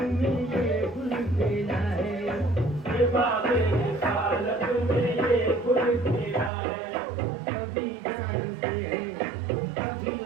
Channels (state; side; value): drops out; left; at 6.5 s